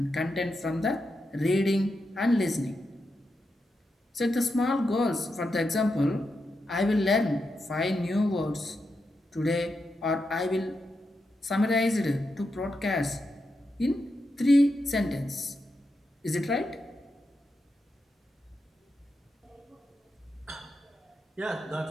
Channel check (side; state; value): both; normal; correlation 0.86